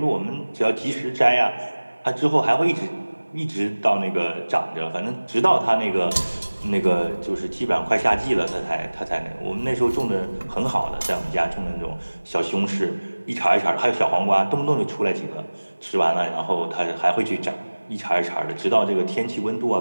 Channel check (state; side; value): inverted; both; correlation -1.00